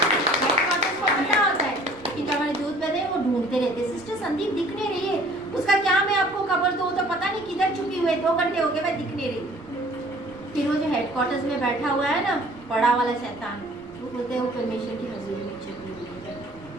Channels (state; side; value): noise; right; rumble, 24 dB below the sound